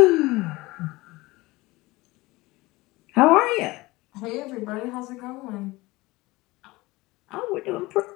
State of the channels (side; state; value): right; quieter; 21.0 dB